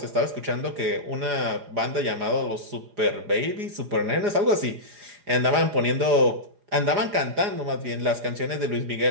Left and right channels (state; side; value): late; left; 4.9 ms